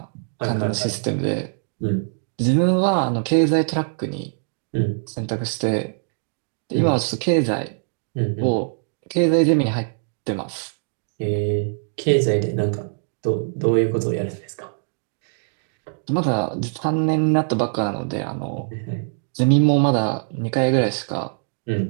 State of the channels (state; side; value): silent; left; digital silence